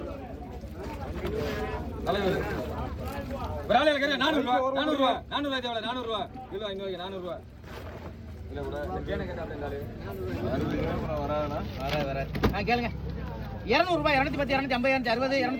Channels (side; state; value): both; identical; correlation 1.00